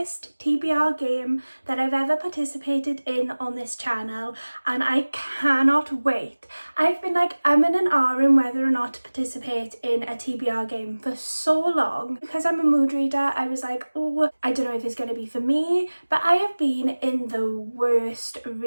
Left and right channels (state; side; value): inverted; both; correlation -1.00